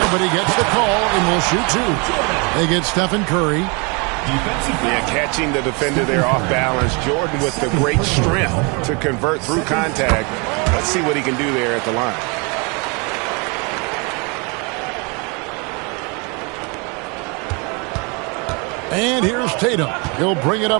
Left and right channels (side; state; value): left; quieter; 31.2 dB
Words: but he gets the call and will shoot 2. They get Stephen Curry. Yeah, catching the defender there off balance. Jordan with the great strength to convert through contact. Let's see what he can do there at the line. And here's Tatum. He'll bring it